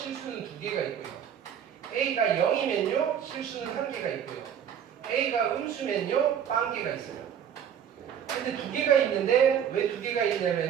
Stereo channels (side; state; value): left; quieter; 8.9 dB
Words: 두 개가 있고요. A가 0이면요 실수는 한 개가 있고요. A가 음수면요 빵 개가 있어요. 근데 두 개가 있는데 왜 두 개가